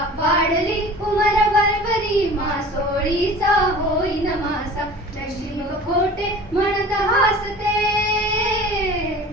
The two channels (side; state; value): both; normal; correlation 0.41